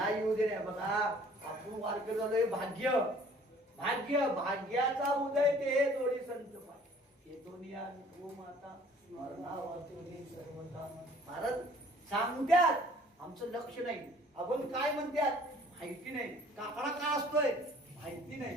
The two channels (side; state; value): both; normal; correlation 0.54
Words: येऊ दे रे. बघा आपण वारकरी झालोय. भाग्य भाग्य भाग्याचा उदय ते जोडी संत पाय. महाराज सांगत्यात, आमचं लक्ष नाही. आपण काय म्हणतात माहिती नाही. काकडा का असतोय माहिती नाही.